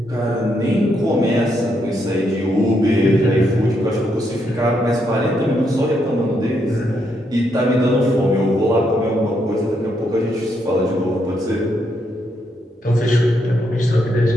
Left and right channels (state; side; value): normal; both; correlation 0.78